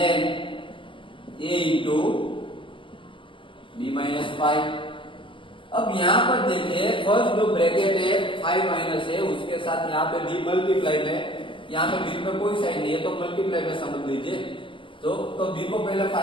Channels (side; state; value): right; late; 0.25 ms